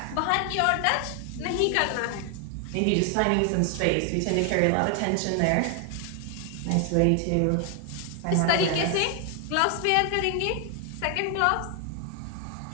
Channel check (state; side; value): different; both; correlation 0.00